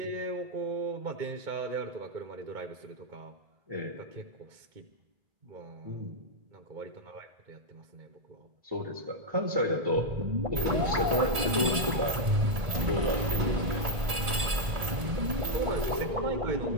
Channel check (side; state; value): left; late; 1.8 ms